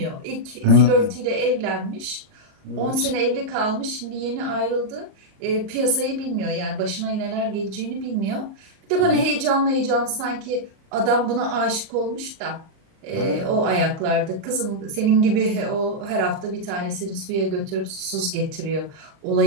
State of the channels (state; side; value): late; left; 38 ms